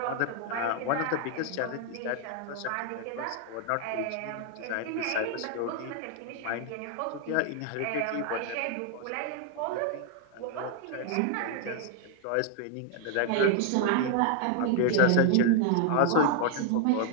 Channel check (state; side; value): different; both; correlation 0.00